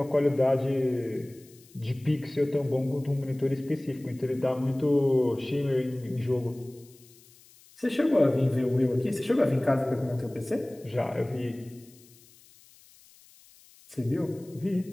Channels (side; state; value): left; noise; hiss, 26 dB below the sound